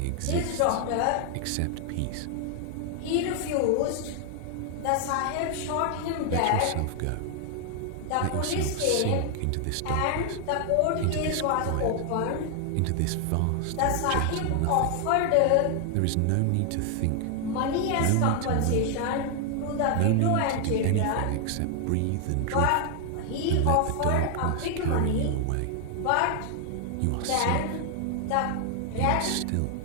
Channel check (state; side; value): different; both; correlation 0.00